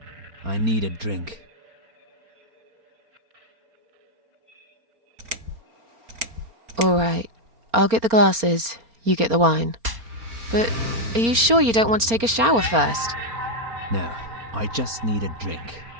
I need a drink. Alright, I'll get the glasses, you get the wine. But are you sure you don't want to take a shower first? No, I just need a drink.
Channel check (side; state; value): left; late; 4.3 ms